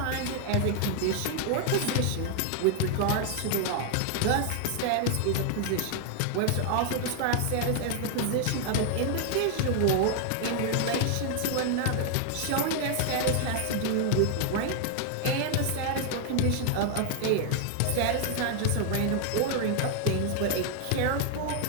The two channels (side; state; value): both; different; correlation 0.00